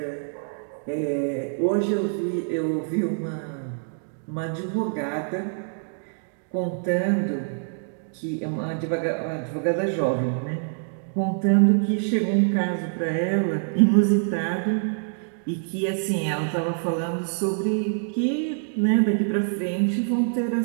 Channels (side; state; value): left; silent; digital silence